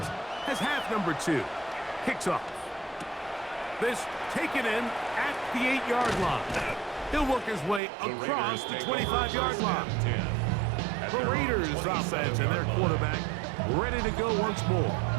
as half number 2 kicks off. This taken in at the 8-yard line. He'll work his way across the 25-yard line. The Raiders offense and their quarterback ready to go once more.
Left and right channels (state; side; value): drops out; left; at 7.8 s